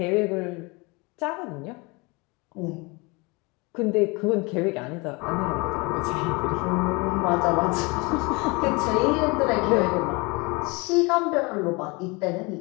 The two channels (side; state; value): right; quieter; 27.2 dB